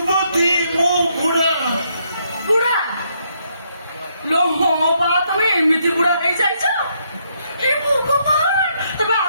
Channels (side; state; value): both; inverted; correlation -0.74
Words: ମୁଁ ବୁଢା। ବୁଢା ଲୋ, ହଁ ବା ତମେ ଏମିତି ବୁଢା ହେଇଯାଇଛ? ଏ ଭଗବାନ, ତମେ